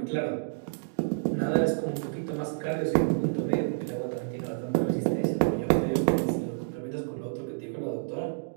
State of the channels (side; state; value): left; silent; digital silence